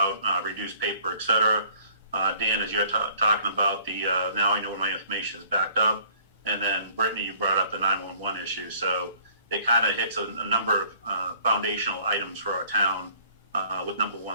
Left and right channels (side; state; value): both; inverted; correlation -0.56